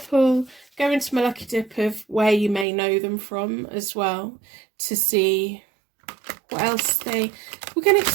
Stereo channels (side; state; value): left; drops out; at 2.7 s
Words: go into my lucky dip of where you may know them from as well, to see what else we're going to